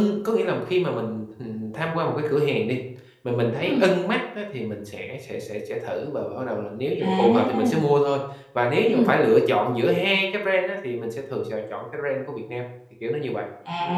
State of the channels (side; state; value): both; identical; correlation 1.00